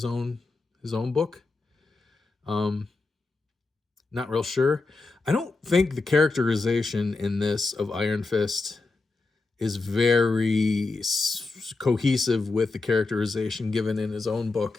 own book. Not real sure. I don't think the characterization in this of Iron Fist is very cohesive with the characterization given in his own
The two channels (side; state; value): right; quieter; 3.7 dB